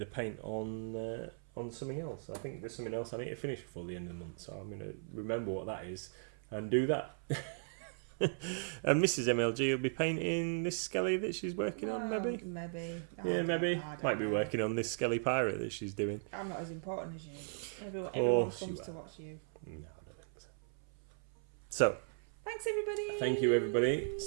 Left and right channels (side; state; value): left; silent; 53 dB below the other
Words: of paint on something else. I think there's something else I need to finish before the end of the month, so I'm going to remember what that is and do that. And Mrs. MLG will be painting this Skelly that she's working on, maybe? Maybe. Yeah, maybe. Might be working on this Skelly pirate that she's doing. I'm not as important as you. Everyone course comes you to are. watch you. No, I don't think so. So, Thanks, everybody. Thank you, everybody.